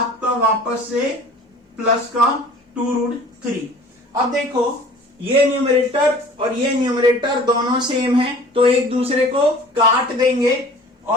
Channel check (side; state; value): both; normal; correlation 0.46